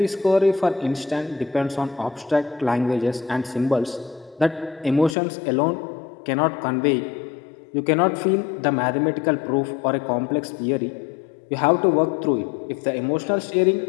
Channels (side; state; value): right; drops out; at 5.2 s